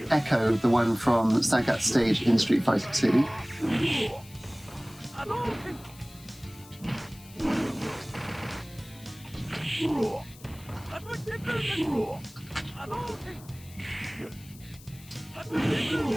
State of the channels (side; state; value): left; noise; hiss, 21 dB below the sound